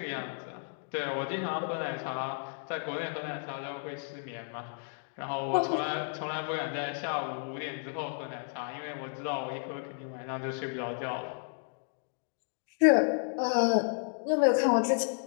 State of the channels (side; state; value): right; silent; 56 dB below the other